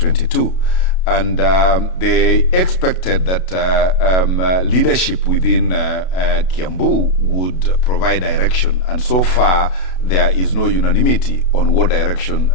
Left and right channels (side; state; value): right; late; 32 ms